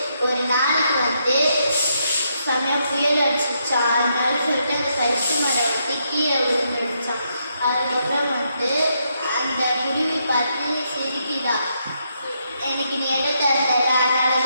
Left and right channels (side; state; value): both; inverted; correlation -0.78